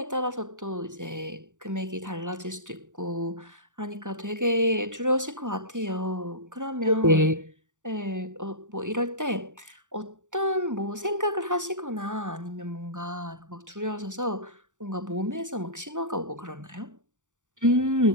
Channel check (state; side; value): late; left; 0.86 ms